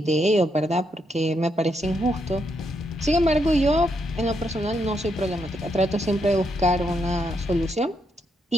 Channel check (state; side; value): normal; both; correlation 0.79